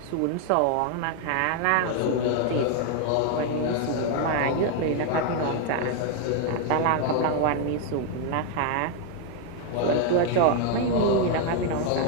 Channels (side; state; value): both; different; correlation 0.01